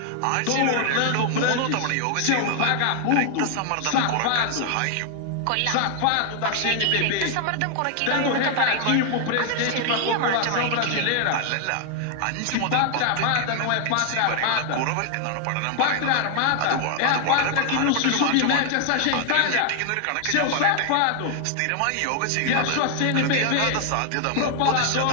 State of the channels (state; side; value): different; both; correlation 0.00